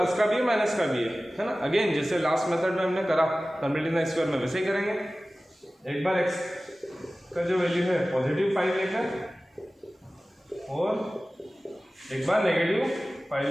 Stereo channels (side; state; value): both; normal; correlation 0.97